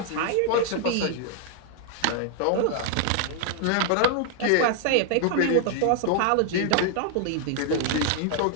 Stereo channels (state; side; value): different; both; correlation 0.00